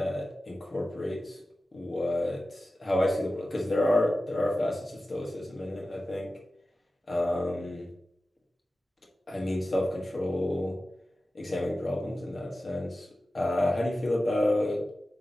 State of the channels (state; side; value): normal; both; correlation 0.94